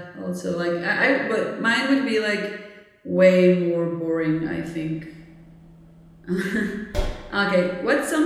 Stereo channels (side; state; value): both; identical; correlation 1.00